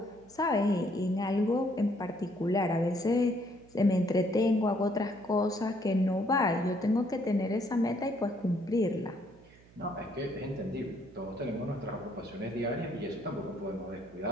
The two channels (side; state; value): right; noise; hum, 25 dB below the sound